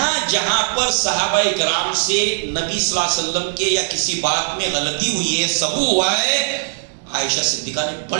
جہاں پر صحابہ کرام سے نبی صلی اللہ علیہ وسلم کے یا کسی بات میں غلطی ہوئی ہے، سبو ہوا ہے، عائشہ صدیقہ نے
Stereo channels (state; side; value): silent; left; digital silence